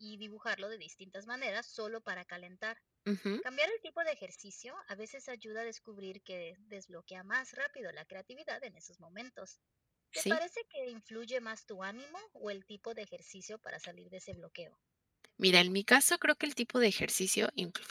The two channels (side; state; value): both; identical; correlation 1.00